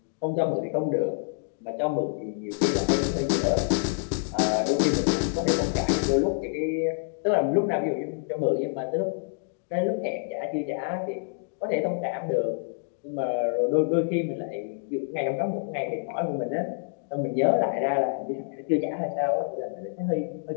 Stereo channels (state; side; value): silent; right; digital silence